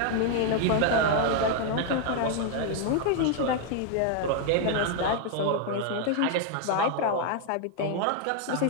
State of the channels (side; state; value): both; different; correlation 0.00